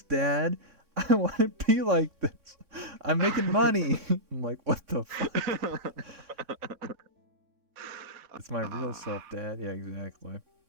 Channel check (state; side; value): late; left; 3.6 ms